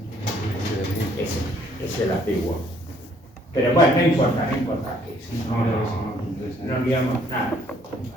Ese es el antiguo. Pero bueno, no importa. Que si no liamos nada.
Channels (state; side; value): normal; both; correlation 0.63